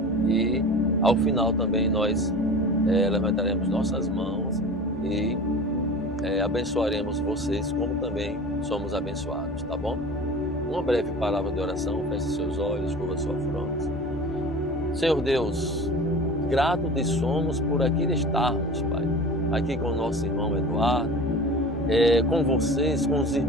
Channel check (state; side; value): noise; left; hum, 15 dB below the sound